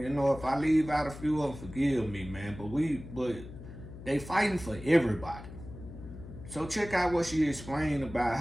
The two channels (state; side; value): noise; left; hum, 14 dB below the sound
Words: You know, if I leave out a few of them, forgive me, man. But they fighting for everybody. So check out what she explained about